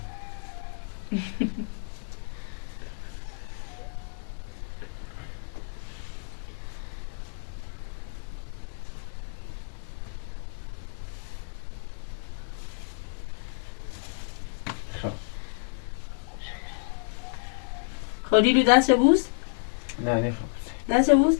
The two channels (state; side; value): silent; right; digital silence